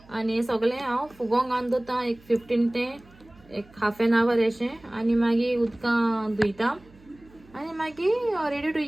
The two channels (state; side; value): noise; right; hum, 26 dB below the sound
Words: आनी सगळें हांव फुगोंक घालून दवरता एक 15 ते एक हाफ एन आवर अशें आनी मागीर उदकां धुयता आनी मागीर रेडी टू